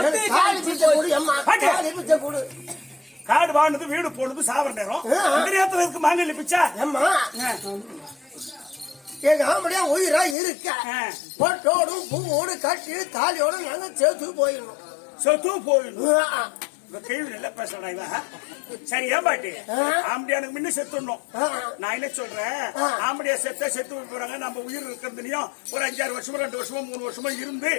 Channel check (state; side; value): drops out; right; at 10.4 s